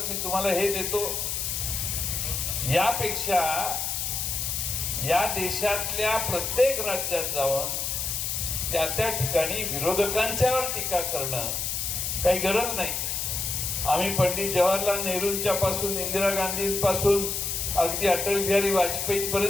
मी तुम्हाला हे देतो. यापेक्षा या देशातल्या प्रत्येक राज्यात जाऊन त्या त्या ठिकाणी विरोधकांच्यावर टीका करणं काही गरज नाही. आम्ही पंडित जवाहरलाल नेहरूंच्या पासून इंदिरा गांधींपासून अगदी अटल बिहारी वाजपेयी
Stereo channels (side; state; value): left; noise; hiss, 1 dB below the sound